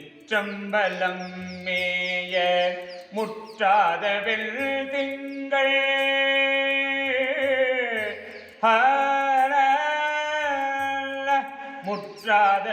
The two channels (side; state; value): both; identical; correlation 1.00